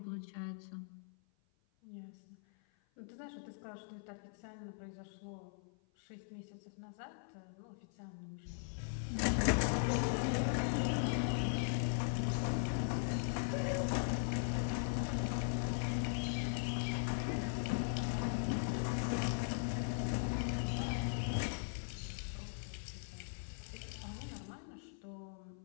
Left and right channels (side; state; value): right; silent; 51 dB below the other